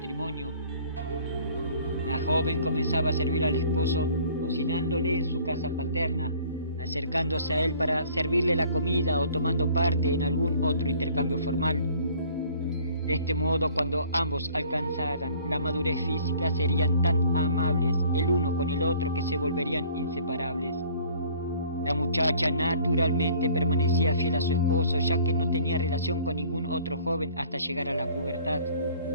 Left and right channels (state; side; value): inverted; both; correlation -0.54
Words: La joven comenzaba a servir al esposo cocinándole en su casa paterna, acercándose a él para servirle la comida o tomando parte en algún otro intercambio formal. De este modo, cuando ambos alcanzaran la madurez física, serían tan amables el uno con el otro que se volverían inseparables. La muchacha naturalmente permanecía fiel a su esposo, ya que no tenía relación con ningún otro joven hasta llegar a la pubertad.